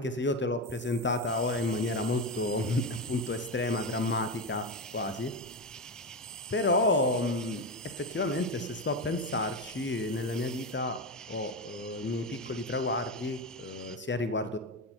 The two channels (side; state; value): both; normal; correlation 0.16